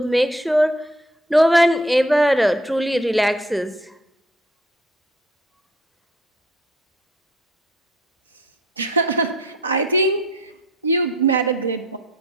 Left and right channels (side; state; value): both; normal; correlation 0.56